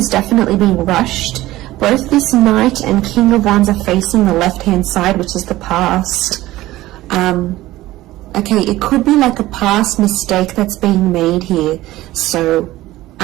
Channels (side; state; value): left; quieter; 16.7 dB